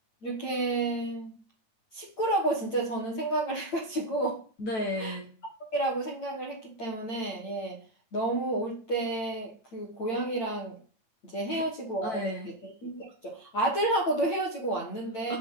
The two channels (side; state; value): right; late; 8.9 ms